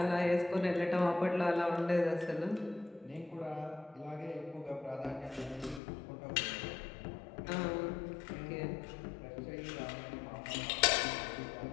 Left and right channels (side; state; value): right; drops out; at 5.8 s